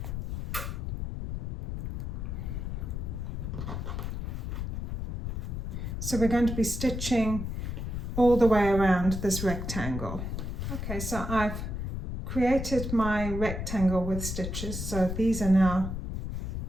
So we're going to be stitching all the way around this rectangle. Okay, so I've created my rectangle with stitches, so these are now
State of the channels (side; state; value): left; noise; rumble, 4 dB below the sound